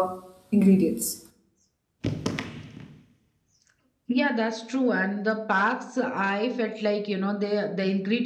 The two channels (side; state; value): both; identical; correlation 1.00